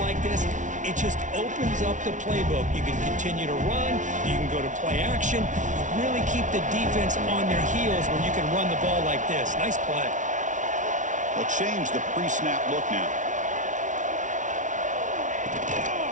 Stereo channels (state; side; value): late; left; 0.37 ms